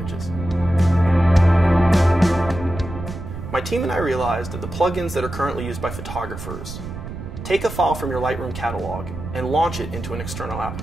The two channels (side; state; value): right; noise; rumble, 9 dB below the sound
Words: My team and I realized that the plugins that are currently used by photographers take a file from your Lightroom catalog and launch it into an external